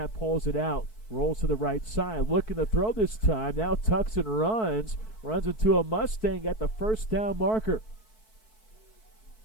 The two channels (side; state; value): right; late; 4.6 ms